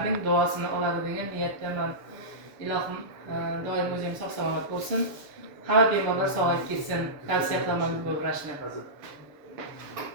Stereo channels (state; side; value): late; left; 7.0 ms